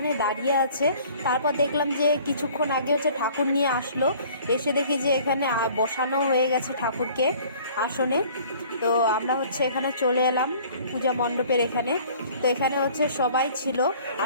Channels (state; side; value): inverted; both; correlation -0.52